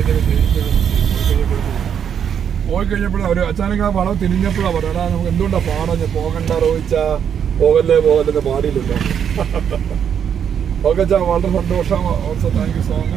പോയി കഴിഞ്ഞപ്പോഴും അവർ അച്ചാനക്ക് ആ വളം തിരിഞ്ഞപ്പോഴാണ് പറയാ, നമുക്ക് എന്തുകൊണ്ടാണ് പാടഞ്ഞ് പോകണ്ട റോയിച്ചാ, പോകല്ലേ പോകല്ലെന്ന് പാടിയില്ലല്ലോ. ഓക്കെ ചാ, വളരെ സന്തോഷം. Also thank you so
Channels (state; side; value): quieter; left; 8.2 dB